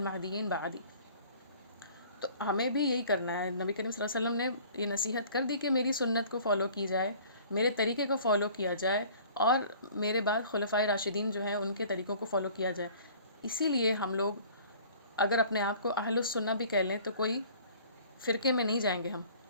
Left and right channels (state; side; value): inverted; both; correlation -0.50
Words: بعدی. تو ہمیں بھی یہی کرنا ہے. نبی کریم صلی اللہ علیہ وسلم نے یہ نصیحت کر دی کہ میری سنت کو فالو کی جائے، میرے طریقے کو فالو کیا جائے، اور میرے بعد خلفائے راشدین جو ہیں ان کے طریقوں کو فالو کیا جائے. اسی لیے ہم لوگ اگر اپنے آپ کو اہل السنہ بھی کہہ لیں تو کوئی فرقے میں نہیں جائیں گے.